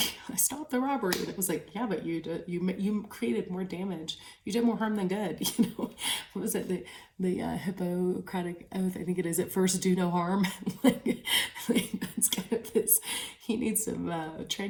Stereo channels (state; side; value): identical; both; correlation 1.00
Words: I stopped the robbery. And it was like, yeah, but you created more damage, you did more harm than good. What was it, the Hippocratic oath, I think it is, at first do no harm. That's kind of this, he needs some